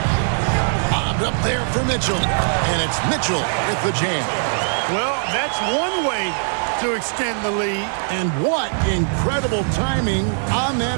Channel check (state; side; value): silent; left; digital silence